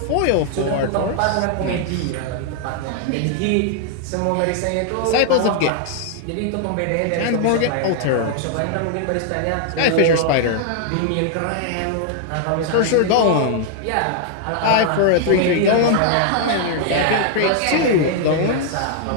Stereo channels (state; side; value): different; both; correlation 0.00